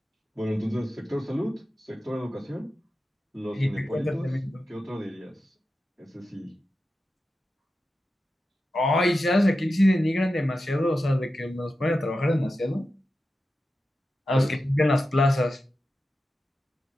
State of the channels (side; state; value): both; normal; correlation 0.91